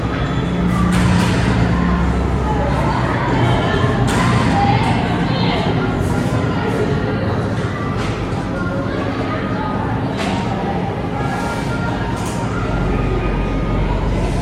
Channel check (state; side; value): identical; both; correlation 1.00